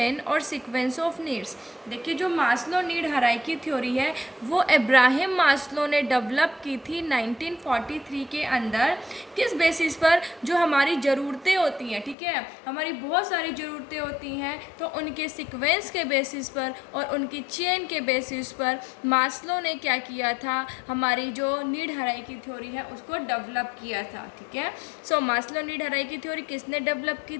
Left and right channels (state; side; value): drops out; right; at 12.2 s